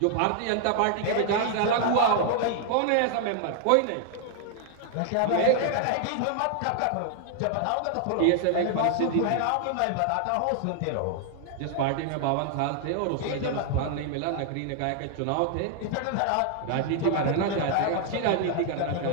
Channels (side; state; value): both; different; correlation 0.00